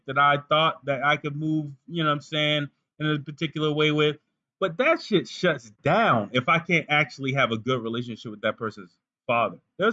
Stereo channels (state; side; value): identical; both; correlation 1.00